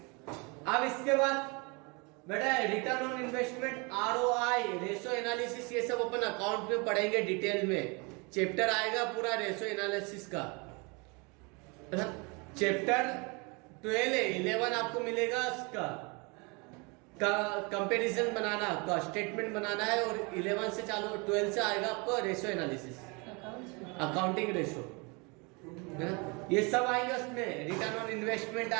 अब इसके बाद बेटा return on investment, ROI, ratio analysis, ये सब अपन अकाउंट में पढ़ेंगे डिटेल में, चैप्टर आएगा पूरा रेशो एनालिसिस का, है ना। चैप्टर 12 है, 11 आपको मिलेगा उसका कंपैरिजन बनाना का स्टेटमेंट बनाना है, और 11 से चालू 12 से आएगा आपको रेशो एनालिसिस, अकाउंटिंग रेशो, है ना, ये सब आएंगे उसमें। रिटर्न ऑन इन्वेस्टमेंट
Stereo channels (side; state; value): left; quieter; 30.0 dB